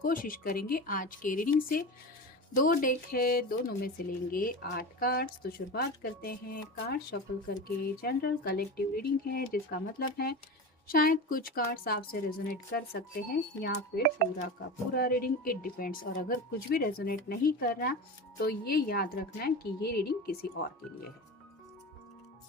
करेंगे आज के रीडिंग से। दो डेक है, दोनों में से लेंगे 8 कार्ड्स। तो शुरुआत करते हैं कार्ड शफल करके। जनरल कलेक्टिव रीडिंग है, जिसका मतलब है शायद कुछ कार्ड्स आपसे रेजोनेट कर सकते हैं या फिर पूरा का पूरा रीडिंग, इट डिपेंड्स। और अगर कुछ भी रेजोनेट नहीं कर रहा तो ये याद रखना है कि ये रीडिंग किसी और के लिए है।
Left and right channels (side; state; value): both; normal; correlation 0.27